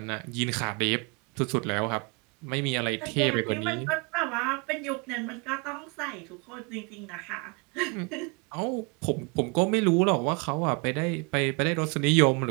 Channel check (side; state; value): left; quieter; 31.5 dB